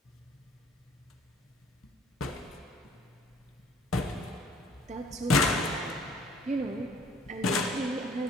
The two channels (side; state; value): both; normal; correlation 0.56